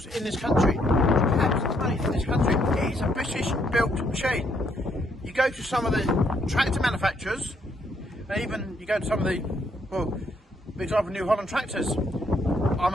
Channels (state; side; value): normal; both; correlation 0.72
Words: in this country. The cabs are made in this country. It is a British built machine. You go to some of the tractor manufacturers, and even you go to some of the, well, for example, New Holland tractors.